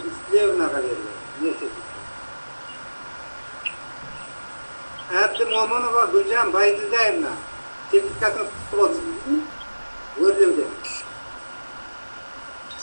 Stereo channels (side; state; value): both; inverted; correlation -1.00